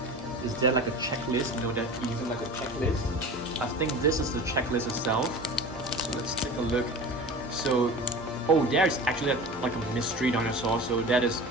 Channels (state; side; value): normal; both; correlation 0.35